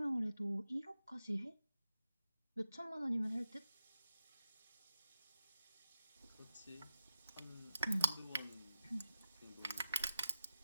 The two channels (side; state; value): both; inverted; correlation -0.90